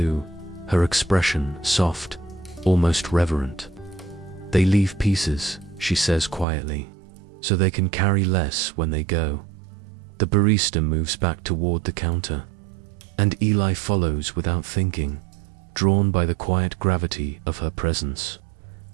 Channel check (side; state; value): left; drops out; at 6.5 s